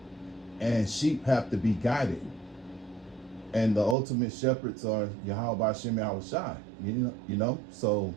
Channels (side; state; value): left; drops out; at 4.0 s